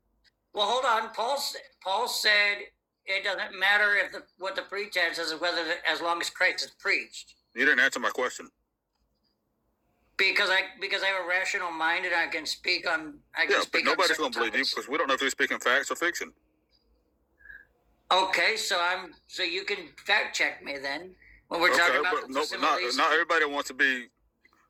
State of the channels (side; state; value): both; identical; correlation 1.00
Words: Well, hold on. Paul said it doesn't matter what the pretense is, as long as Christ is preached. You didn't answer my question. Because I have a rational mind and I can speak on. But nobody's going to believe you because we don't know if you're speaking facts or fiction. Okay, so you can fact check me then when we're talking about not everybody wants to be